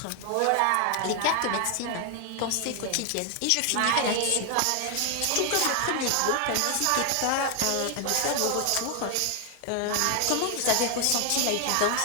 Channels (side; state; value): both; different; correlation 0.01